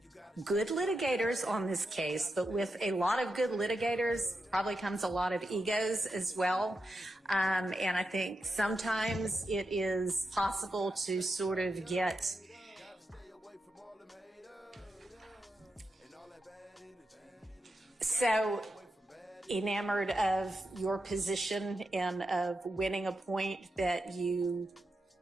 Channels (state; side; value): normal; both; correlation 0.88